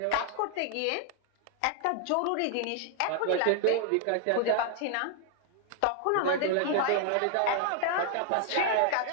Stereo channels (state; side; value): different; both; correlation 0.00